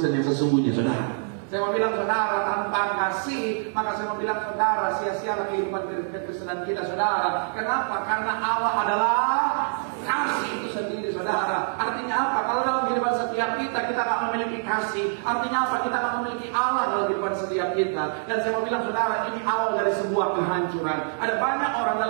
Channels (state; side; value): silent; left; digital silence